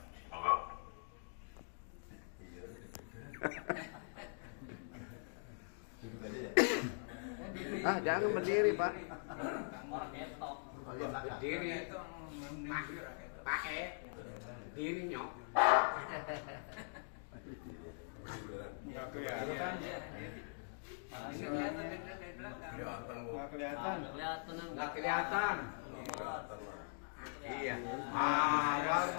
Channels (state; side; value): silent; right; digital silence